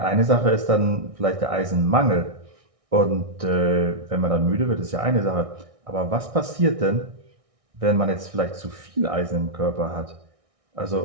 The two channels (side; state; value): left; late; 1.6 ms